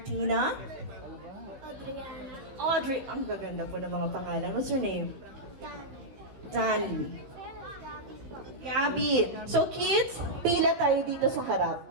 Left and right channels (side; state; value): left; late; 15 ms